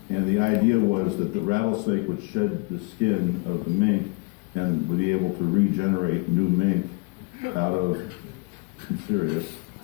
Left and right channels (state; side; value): quieter; right; 28.3 dB